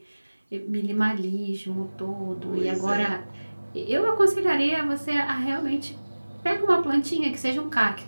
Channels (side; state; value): both; inverted; correlation -1.00